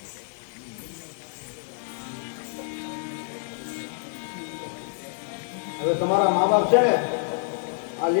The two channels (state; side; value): silent; right; digital silence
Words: તમારા મા બાપ છે ને આ